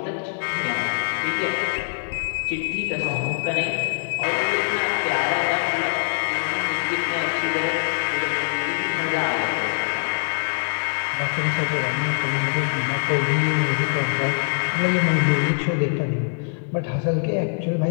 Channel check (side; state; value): right; silent; digital silence